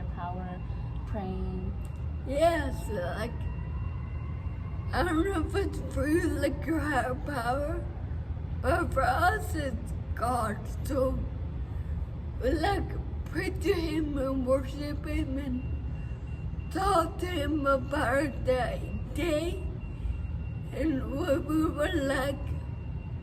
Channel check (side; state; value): both; identical; correlation 1.00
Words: power, praying. Yes, like I don't know if it's for you, like your higher power, but for us, it's God. So we like pray to Him and worship Him and talk to Him about that day and what we would like